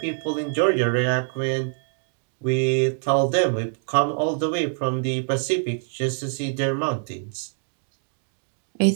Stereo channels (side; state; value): left; silent; 62 dB below the other